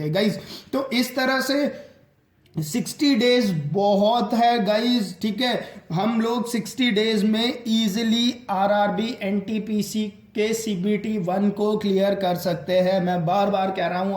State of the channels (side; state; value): both; identical; correlation 1.00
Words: हैं गाइज। तो इस तरह से 60 डेज बहुत है गाइज, ठीक है। हम लोग 60 डेज में इजीली RRB NTPC के CBT 1 को क्लियर कर सकते हैं। मैं बार बार कह रहा